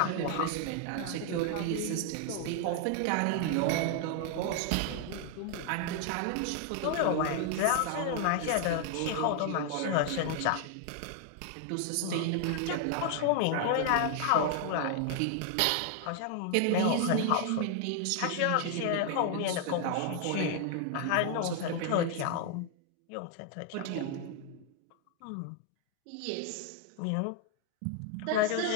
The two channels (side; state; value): both; different; correlation 0.00